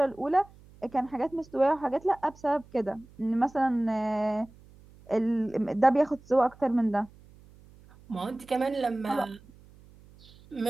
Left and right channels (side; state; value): right; noise; hum, 24 dB below the sound